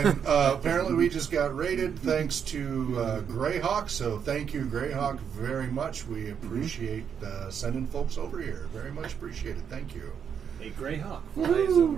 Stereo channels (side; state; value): left; quieter; 7.6 dB